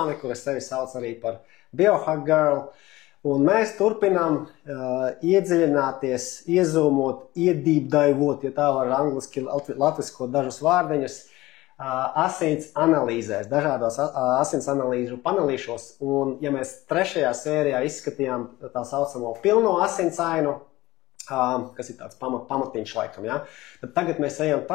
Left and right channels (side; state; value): right; quieter; 18.4 dB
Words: kura sevi sauc arī par Biohack Girl. Un mēs turpinām iedziļināties, iezūmot, iedīpdaivot, ja tā var angliski latviskot dažus vārdiņus, asins analīzēs, dažādos asins analīžu panelīšos. Un ja mēs 3. sērijā izskatījām tā saucamo pilno asinsainu, kas ir tāds pamatiņš laikam, ja? Tad tagad mēs ejam